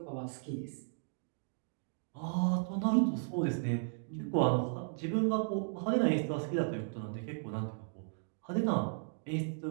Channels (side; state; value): left; silent; digital silence